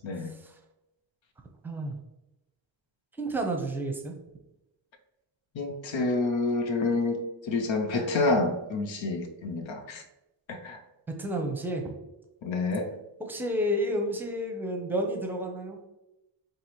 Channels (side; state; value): both; normal; correlation 0.21